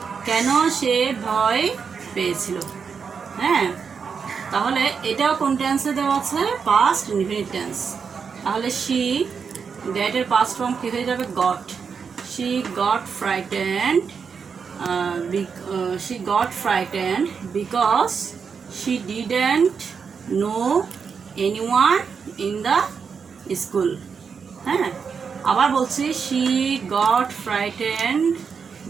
কেন সে ভয় পেয়েছিল? হ্যাঁ, তাহলে এটাও কোন টেন্সে দেওয়া আছে, পাস্ট ইনডিফিনিট টেন্স। তাহলে শি, গেটের পাস্ট ফর্ম কী হয়ে যাবে, goat. She got frightened, she got frightened because she didn't know anyone in the school. হ্যাঁ, আবার বলছি, she got frightened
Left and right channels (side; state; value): left; quieter; 6.0 dB